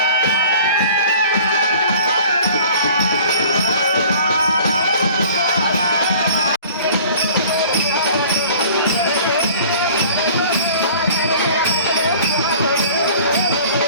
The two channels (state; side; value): inverted; both; correlation -0.48